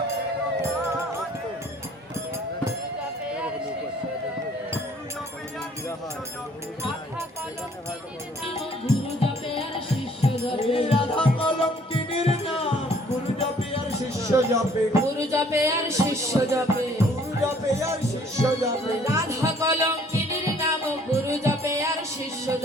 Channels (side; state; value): both; normal; correlation 0.59